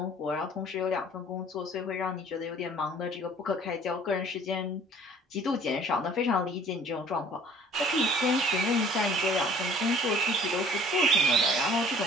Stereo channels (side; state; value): both; normal; correlation 0.52